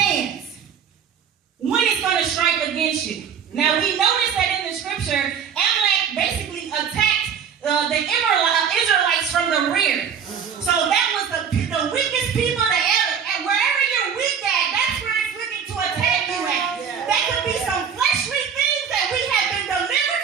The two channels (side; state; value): left; quieter; 7.4 dB